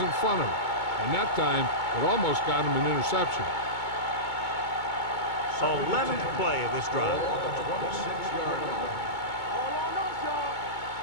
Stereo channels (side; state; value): right; late; 2.2 ms